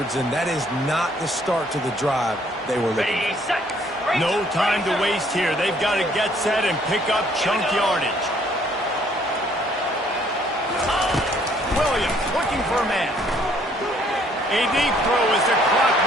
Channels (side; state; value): both; normal; correlation 0.63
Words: and that is not the start to the drive they were looking for. No time to waste here. They've got to get set and pick up chunk yardage. Williams looking for a man. A deep throw as the clock